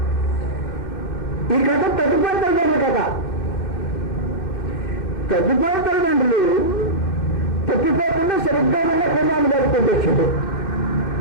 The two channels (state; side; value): late; right; 2.1 ms